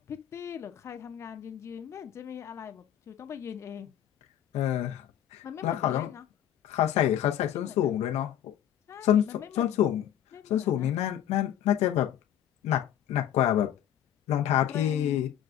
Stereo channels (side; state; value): right; quieter; 10.8 dB